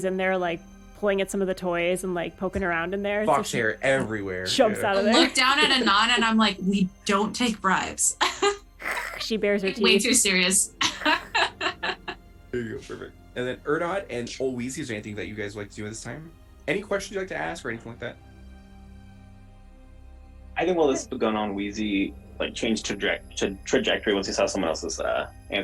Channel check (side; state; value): both; identical; correlation 1.00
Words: in there like pulling at some of the toys and like poking around in there. Fox she hair everywhere. jumps out I of there. look down at Anon and I'm like, we don't take bribes. She bares her Way teeth. too serious. There you go, perfect. And then Erdod and Old Weezy, is there anything that you guys would like to do at this time? Any questions you'd like to ask or anything like that? I think while this is going on, Wheezy like changed trajectory once he saw someone else is